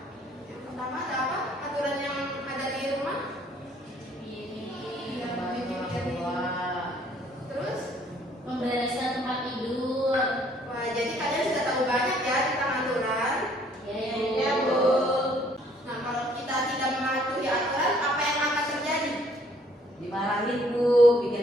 Yang pertama ada apa? Aturan yang ada di rumah? Terus? Membereskan tempat tidur. Wah, jadi kalian sudah tahu banyak ya tentang aturan. Iya, Bu. Nah, kalau kita tidak mematuhi aturan, apa yang akan terjadi? Dimarahin, Bu. Bikin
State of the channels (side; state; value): both; normal; correlation 0.62